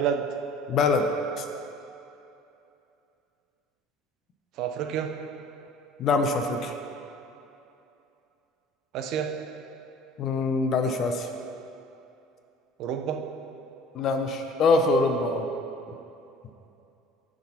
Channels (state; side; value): normal; both; correlation 0.48